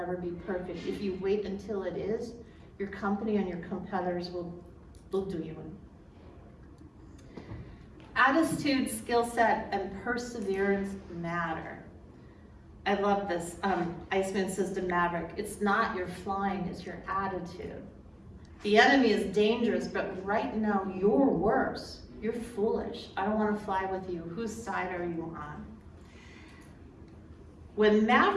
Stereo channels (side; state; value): both; identical; correlation 1.00